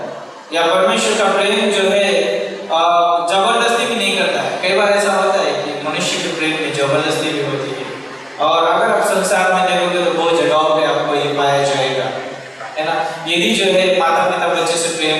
या परमेश्वर का प्रेम जो है जबरदस्ती भी नहीं करता है। कई बार ऐसा होता है कि मनुष्य के प्रेम में जबरदस्ती भी होती है, और अगर आप संसार में देखोगे तो बहुत जगहों पे आपको ये पाया जाएगा, है ना। यदि जो है माता पिता बच्चे से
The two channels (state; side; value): identical; both; correlation 1.00